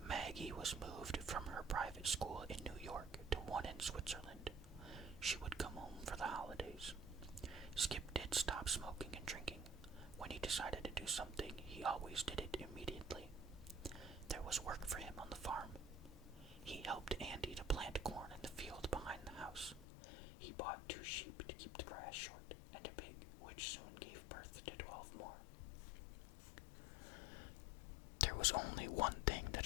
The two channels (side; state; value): right; drops out; at 19.9 s